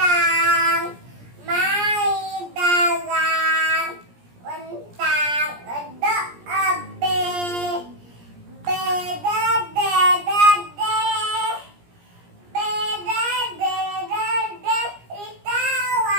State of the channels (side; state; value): left; late; 17 ms